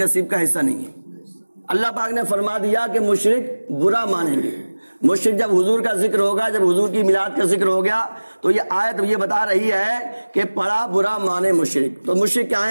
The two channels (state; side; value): inverted; both; correlation -1.00